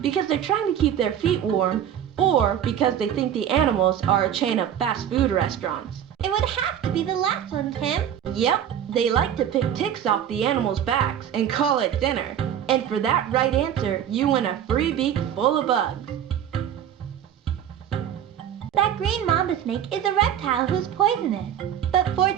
because they're trying to keep their feet warm, or because they think the animals are a chain of fast food restaurants? It would have to be the last one, Tim. Yep, they like to pick ticks off the animals' backs and call it dinner. And for that right answer, you win a free beak full of bugs. That green mamba snake is a reptile who's poisonous, but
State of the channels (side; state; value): left; quieter; 9.8 dB